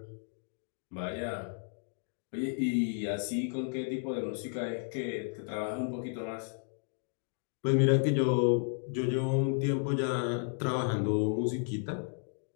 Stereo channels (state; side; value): silent; right; 56 dB below the other